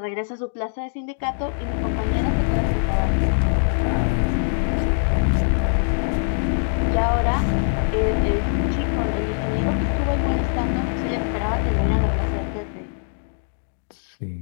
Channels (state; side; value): silent; right; digital silence